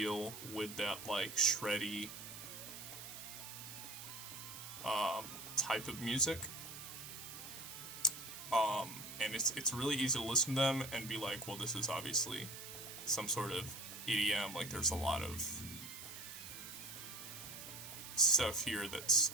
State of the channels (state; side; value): noise; right; hiss, 10 dB below the sound